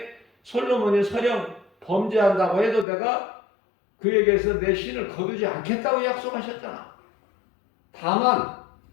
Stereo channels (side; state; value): right; drops out; at 2.9 s